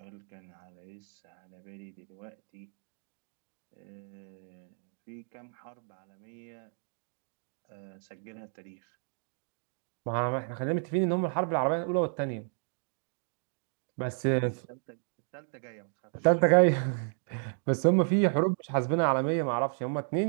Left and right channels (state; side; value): silent; left; 56 dB below the other